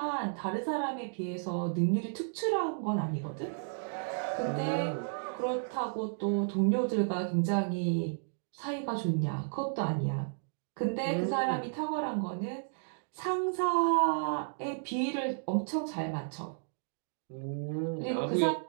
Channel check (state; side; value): silent; left; digital silence